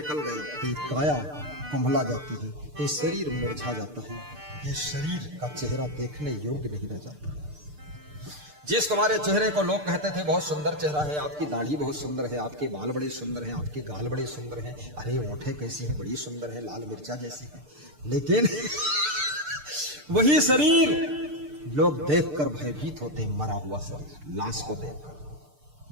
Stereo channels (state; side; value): late; left; 6.7 ms